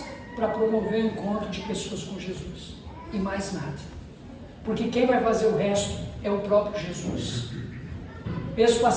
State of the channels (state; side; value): identical; both; correlation 1.00